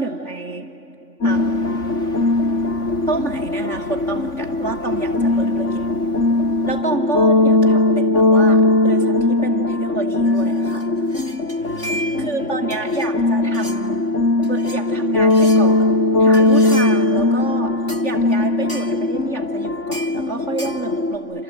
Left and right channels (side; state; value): right; late; 3.5 ms